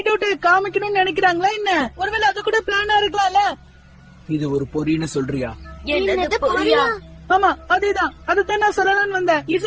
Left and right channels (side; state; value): both; identical; correlation 1.00